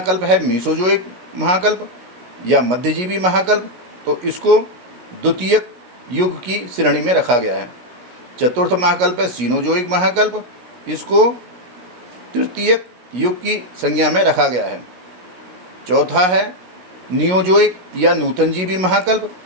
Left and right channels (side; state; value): left; late; 16 ms